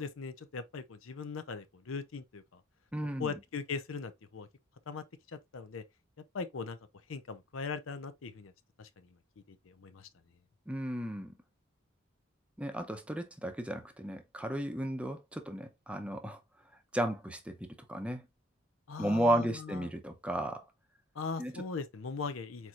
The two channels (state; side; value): normal; both; correlation 0.65